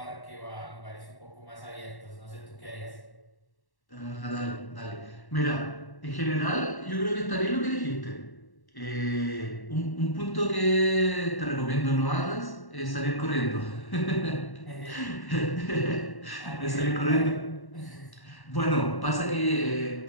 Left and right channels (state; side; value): late; right; 1.1 ms